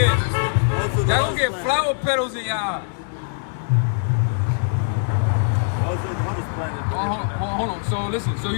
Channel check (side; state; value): right; silent; digital silence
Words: That'll get flower petals in your eye. Also, the hottest planet. Hold on. So listen. So